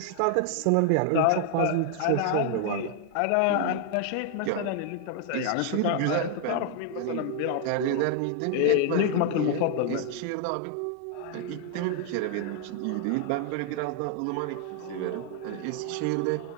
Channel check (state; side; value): different; both; correlation 0.00